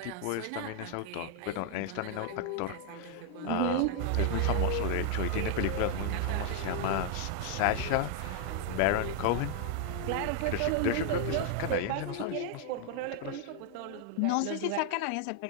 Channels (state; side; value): different; both; correlation 0.00